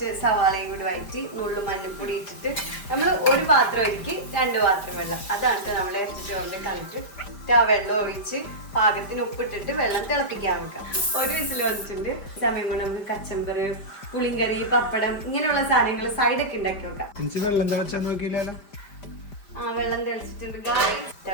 സവാളയും കൂടി വഴറ്റി നുള്ളു മഞ്ഞൾപ്പൊടി ഇട്ടിട്ട് നമ്മൾ ഒരു പാത്രം ഒഴുക്കി 2 പാത്രം വെള്ളം. അതാണ് നമ്മൾ ഇറച്ചി ചോറിന്റെ കളിട്ട് ആ വെള്ളം ഒഴിച്ച് പാകത്തിന് ഉപ്പിട്ടിട്ട് വെള്ളം തിളപ്പിക്കാൻ വെക്കാം. ഒരു വിസിൽ വന്നിട്ടുണ്ട്. സമയം കൊണ്ട് നമുക്ക് കച്ചമ്പർ, പുളിങ്കറി, പപ്പടം ഇങ്ങനെയുള്ള സാധനങ്ങൾ സൈഡൊക്കെ ഉണ്ടാക്കി വെക്കാം. വെള്ളം തിളച്ചാൽ നോക്കിയില്ലല്ലോ. വെള്ളം തിളച്ചിട്ടുണ്ട്.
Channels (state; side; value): late; right; 5.0 ms